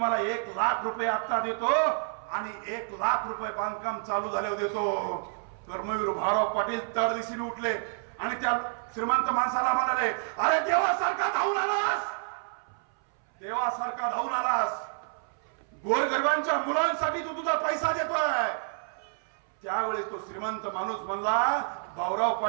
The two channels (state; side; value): silent; left; 59 dB below the other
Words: 1 लाख रुपये आता देतो आणि 1 लाख रुपये बांधकाम चालू झाल्यावर देतो. कर्मवीर भाऊराव पाटील तडदिशीने उठले आणि त्या श्रीमंत माणसाला म्हणाले अरे देवासारखा धावून आलास, देवासारखा धावून आलास, गोरगरिबांच्या मुलांसाठी तू तुझा पैसा देतोय. त्यावेळेस तो श्रीमंत माणूस म्हणला भाऊराव